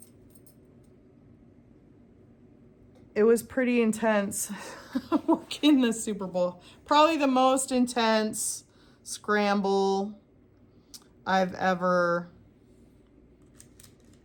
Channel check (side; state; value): both; identical; correlation 1.00